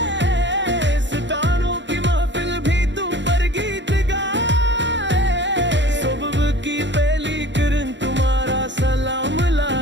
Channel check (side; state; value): left; late; 0.53 ms